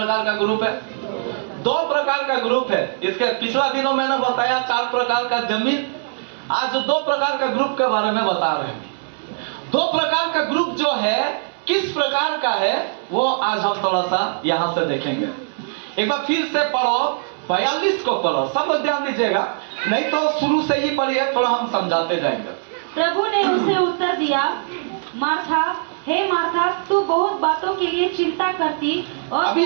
का ग्रुप है? 2 प्रकार का ग्रुप है। इसके पिछला दिनों मैंने बताया 4 प्रकार का जमीन। आज 2 प्रकार का ग्रुप के बारे में बता रहे हैं। 2 प्रकार का ग्रुप जो है किस प्रकार का है वो आज हम थोड़ा सा यहाँ से देखेंगे। एक बार फिर से पढ़ो, 42 को पढ़ो, सब लोग ध्यान दीजिएगा, नहीं तो शुरू से ही पढ़िए, थोड़ा हम समझाते जाएंगे। प्रभु ने उसे उत्तर दिया, मार्था, हे मार्था, तू बहुत बातों के लिए चिंता करती और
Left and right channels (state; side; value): silent; left; 65 dB below the other